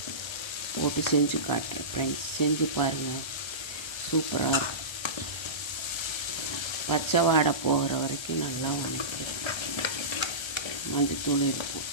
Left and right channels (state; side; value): late; right; 1.3 ms